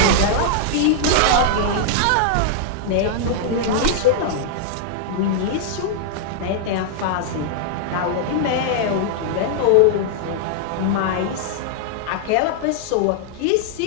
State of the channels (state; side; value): different; both; correlation -0.01